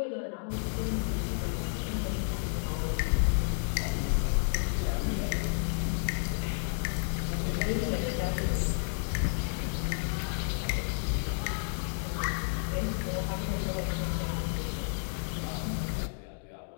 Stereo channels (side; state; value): right; silent; digital silence